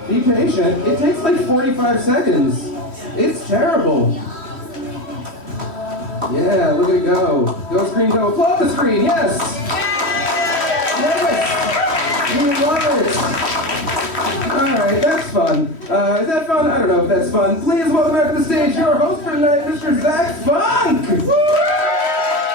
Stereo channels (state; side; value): late; right; 3.1 ms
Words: Be patient. It takes like 45 seconds. It's terrible. Yeah, look at it go. Go screen, go. Applaud the screen, yes! Yes! We love it! Alright, that's fun. Is that fun? I don't know if that's fun. Please welcome back to the stage your host for tonight, Mr. Zach Funk!